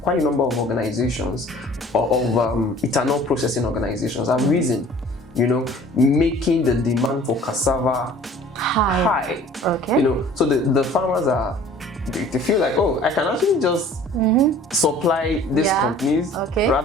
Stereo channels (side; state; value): both; normal; correlation 0.49